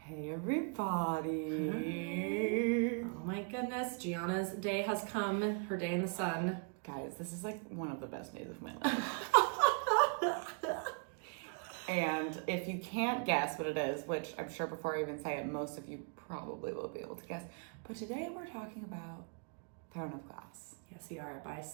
Hey everybody. Oh my goodness, Gianna's day has come. Her day in the sun. Guys, this is like one of the best days of my life. And if you can't guess what it is, which I'm sure before I even say it, most of you probably will be able to guess. But today we're talking about Throne of Glass. Yes, we are, by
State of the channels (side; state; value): left; quieter; 36.9 dB